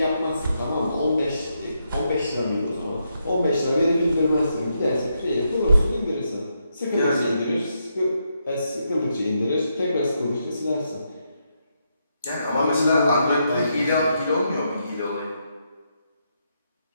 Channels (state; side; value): inverted; both; correlation -0.81